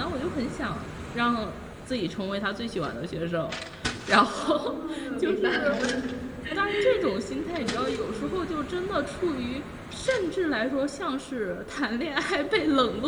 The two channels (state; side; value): identical; both; correlation 1.00